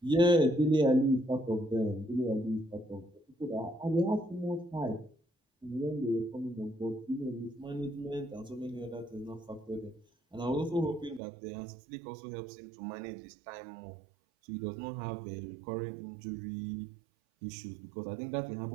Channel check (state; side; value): drops out; left; at 11.2 s